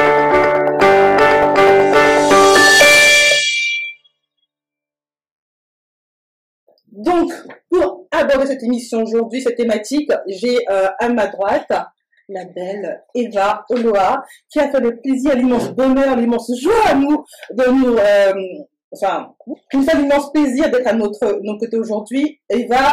Donc, pour aborder cette émission aujourd'hui, cette thématique, j'ai à ma droite la belle Eva Oloa, qui a fait le plaisir, l'immense bonheur, l'immense joie à nous, qui nous fait l'immense plaisir d'être à notre côté aujourd'hui.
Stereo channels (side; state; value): both; identical; correlation 1.00